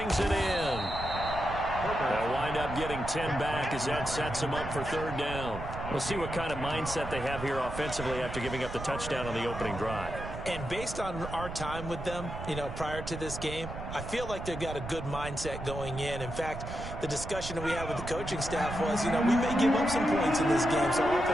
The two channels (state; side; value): noise; right; rumble, 8 dB below the sound